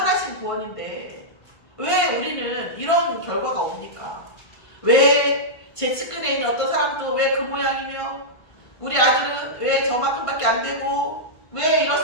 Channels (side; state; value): right; late; 1.5 ms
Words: 구원인데 왜 우리는 이런 결과가 옵니까? 왜 제 측근에 있는 어떤 사람도 왜 그 모양이며 우리 아들은 왜 저만큼밖에 안 되고 왜